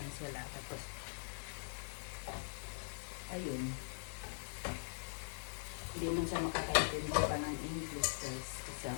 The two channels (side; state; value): right; silent; digital silence